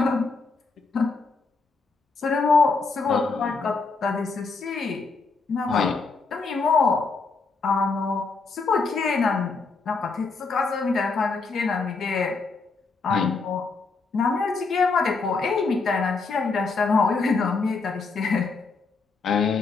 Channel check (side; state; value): right; quieter; 4.3 dB